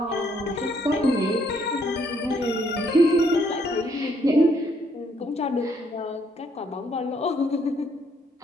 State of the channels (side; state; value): both; normal; correlation 0.69